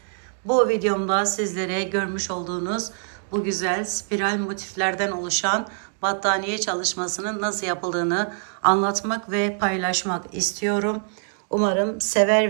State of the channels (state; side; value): silent; left; digital silence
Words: Bu videomda sizlere görmüş olduğunuz bu güzel spiral motiflerden oluşan battaniye çalışmasının nasıl yapıldığını anlatmak ve paylaşmak istiyorum. Umarım